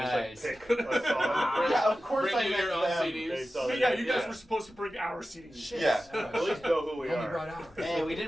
can just like pick a song. Yeah, of course Bring I you meant your own them. CDs. But yeah, you guys Yeah. were supposed to bring our CDs. Yeah. At least know who we Only are. brought ours. hey, we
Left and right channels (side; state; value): both; normal; correlation 0.94